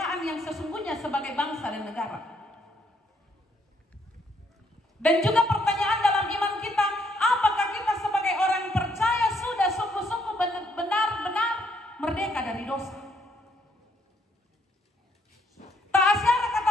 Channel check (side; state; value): both; normal; correlation 0.71